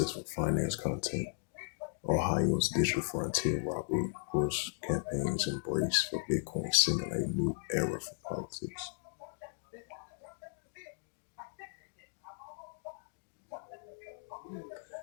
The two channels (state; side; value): silent; right; digital silence